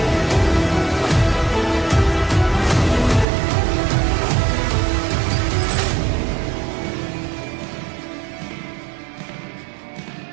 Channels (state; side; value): drops out; left; at 3.2 s